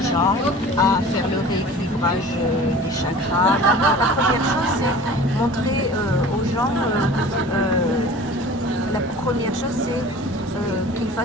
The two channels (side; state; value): both; normal; correlation 0.42